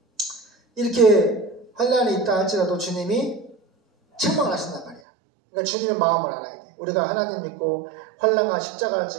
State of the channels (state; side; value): drops out; left; at 5.0 s